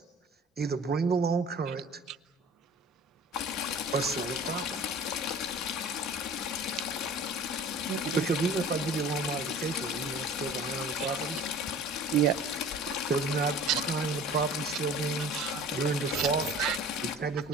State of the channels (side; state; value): both; normal; correlation 0.44